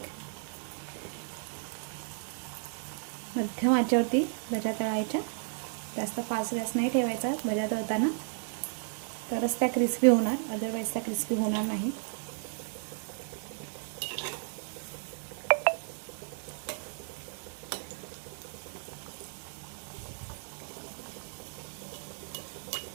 मध्यम आचेवरती भज्या तळायच्या. जास्त फास्ट गॅस नाही ठेवायचा भज्या तळताना, तरच त्या क्रिस्पी होणार, अदरवाईज त्या क्रिस्पी होणार नाही.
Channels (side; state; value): left; silent; 55 dB below the other